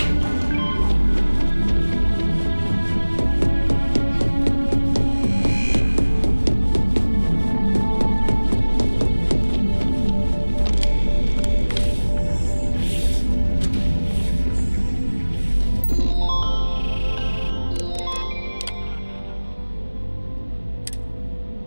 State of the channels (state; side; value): inverted; both; correlation -1.00